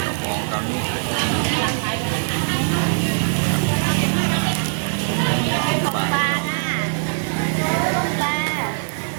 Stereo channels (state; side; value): silent; left; digital silence